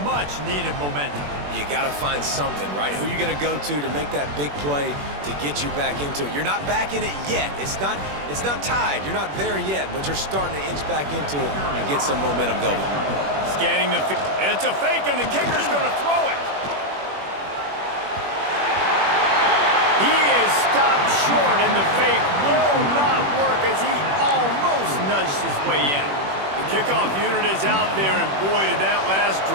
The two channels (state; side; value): late; left; 21 ms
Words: much-needed momentum. You got to find something, right? Who are you going to go to make that big play to get you back into it? You're not back in it yet. It's not tied. You're not there yet, but you're starting to inch back into it and get some momentum going. Scanning the field. It's a fake, and the kicker's going to throw it. He is stopped short, and the fake will not work as he almost nudged his way in. The kickoff unit is out there, and boy, did that last